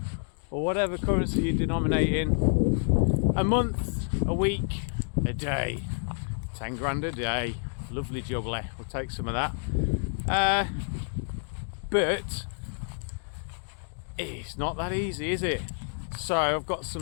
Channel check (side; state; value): right; silent; digital silence